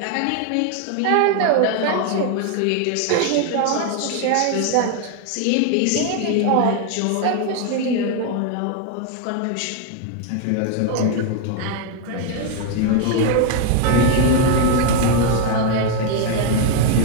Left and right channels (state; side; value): different; both; correlation 0.01